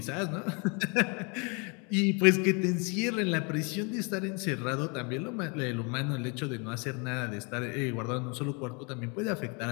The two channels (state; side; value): quieter; right; 33.0 dB